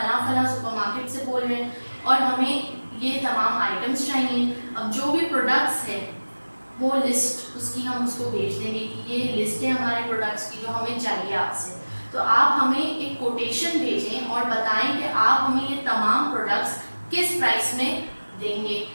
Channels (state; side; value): inverted; both; correlation -1.00